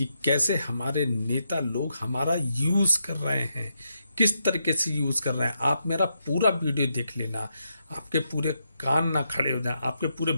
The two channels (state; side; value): inverted; both; correlation -0.82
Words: कैसे हमारे नेता लोग हमारा यूज कर रहे हैं, किस तरीके से यूज कर रहे हैं। आप मेरा पूरा वीडियो देख लेना, आपके पूरे कान ना खड़े हो जाएं, आपके पूरे